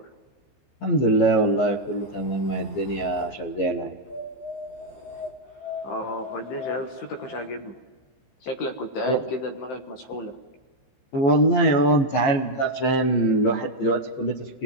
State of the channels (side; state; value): right; late; 15 ms